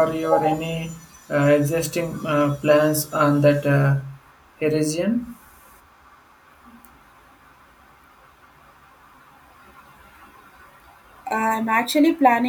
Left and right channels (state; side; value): identical; both; correlation 1.00